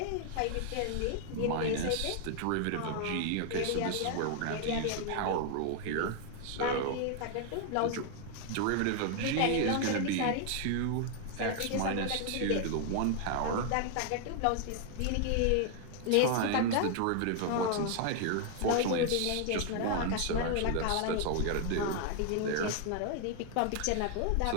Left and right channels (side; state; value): both; different; correlation 0.00